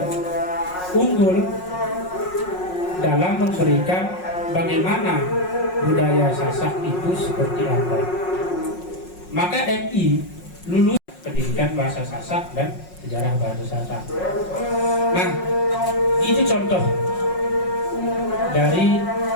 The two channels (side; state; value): right; late; 5.5 ms